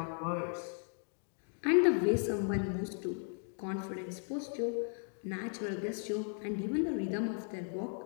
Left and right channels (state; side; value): silent; right; 54 dB below the other